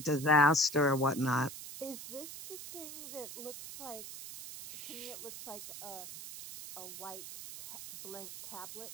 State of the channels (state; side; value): noise; right; hiss, 10 dB below the sound